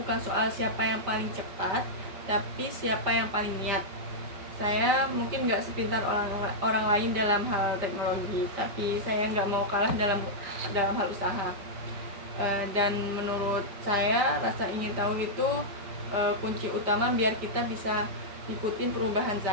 soal siapa yang paling cepat, tapi siapa yang paling niat. Saya mungkin nggak sepintar orang lain dalam hal teknologi, tapi saya nggak mau kalah dalam hal usaha. Dan menurut saya rasa ingin tahu itu kunci utama biar kita bisa ikutin perubahan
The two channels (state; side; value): late; left; 5.4 ms